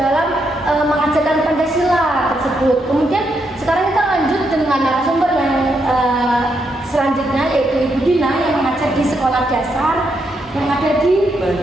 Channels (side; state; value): both; normal; correlation 0.80